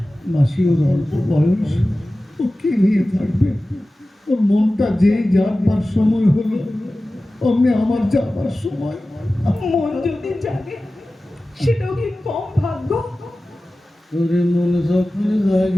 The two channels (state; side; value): normal; both; correlation 0.96